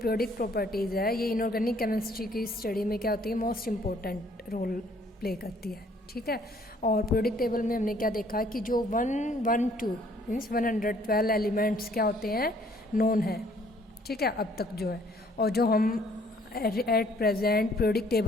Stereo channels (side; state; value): both; normal; correlation 0.61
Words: properties है ये इनऑर्गेनिक केमिस्ट्री की स्टडी में क्या होती है, मोस्ट इम्पोर्टेंट रोल प्ले करती है. ठीक है, और periodic टेबल में हमने क्या देखा कि जो 112 मीन्स 112 एलिमेंट्स क्या होते हैं, नोन है. ठीक है, अब तक जो है, और जो हम at present periodic